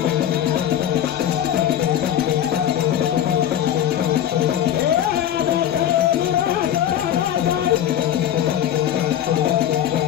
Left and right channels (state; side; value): quieter; right; 10.6 dB